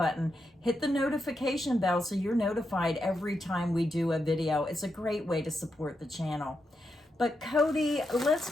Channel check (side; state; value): both; normal; correlation 0.85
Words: hit the notification bell so you're notified every time we do a video. It's a great way to support the channel. But Cody, let's